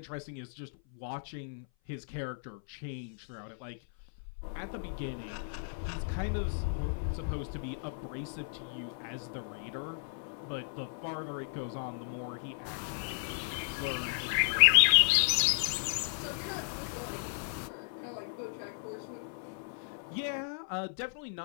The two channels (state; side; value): silent; right; 55 dB below the other